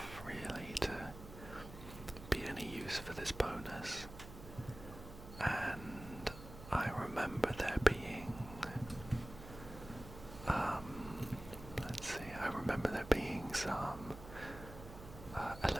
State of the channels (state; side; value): noise; right; hum, 14 dB below the sound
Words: really to be any use for this bonus, and I remember there being some